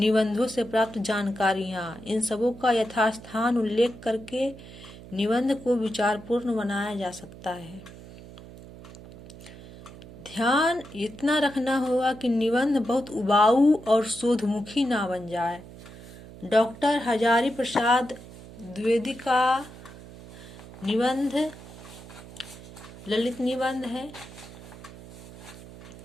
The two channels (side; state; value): right; noise; hum, 17 dB below the sound